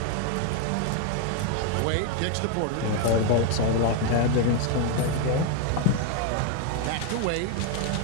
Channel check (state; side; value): different; both; correlation 0.01